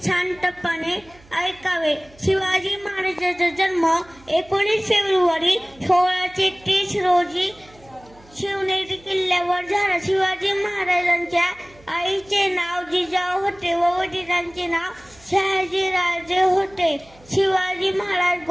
शांतपणे ऐकावे. शिवाजी महाराजांचा जन्म 19 फेब्रुवारी 1630 रोजी शिवनेरी किल्ल्यावर झाला. शिवाजी महाराजांच्या आईचे नाव जिजाऊ होते व वडिलांचे नाव शहाजीराजे होते. शिवाजी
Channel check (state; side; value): noise; right; hum, 26 dB below the sound